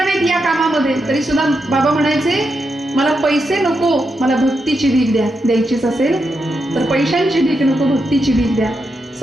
या कामामध्ये, तरी सुद्धा बाबा म्हणायचे मला पैसे नको, मला भक्तीची भीक द्या. द्यायचीच असेल तर पैशांची भीक नको, भक्तीची भीक द्या.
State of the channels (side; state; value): both; normal; correlation 0.85